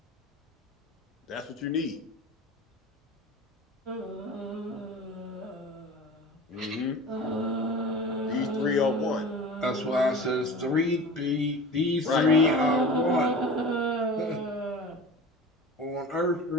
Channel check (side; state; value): both; normal; correlation 0.36